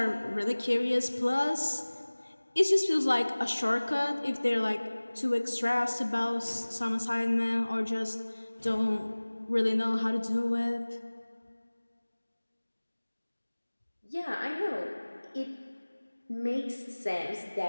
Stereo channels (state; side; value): inverted; both; correlation -1.00